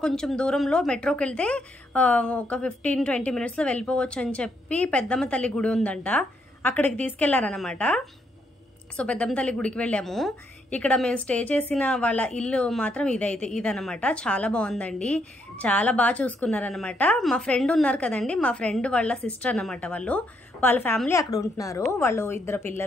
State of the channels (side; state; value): both; normal; correlation 0.75